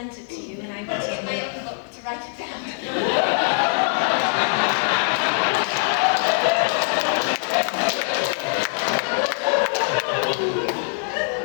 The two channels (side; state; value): right; silent; digital silence